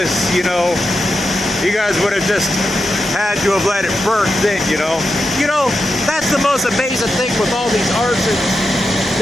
you know. You guys would have just had to have let it burn then, you know. You know, that's the most amazing thing with all these arsons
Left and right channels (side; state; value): both; normal; correlation 0.88